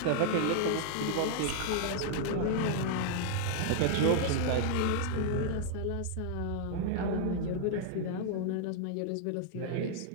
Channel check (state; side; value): different; both; correlation 0.00